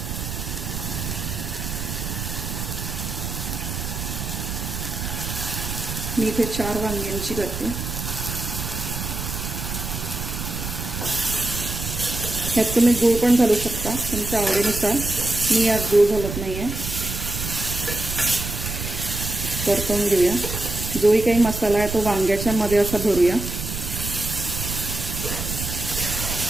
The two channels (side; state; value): right; noise; rumble, 5 dB below the sound